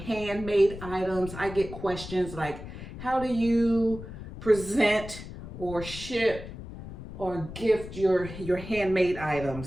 items. I get questions like, how do you present or ship or gift your handmade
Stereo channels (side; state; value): left; noise; rumble, 12 dB below the sound